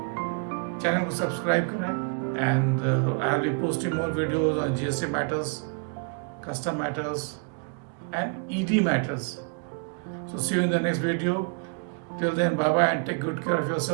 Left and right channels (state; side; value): quieter; left; 38.1 dB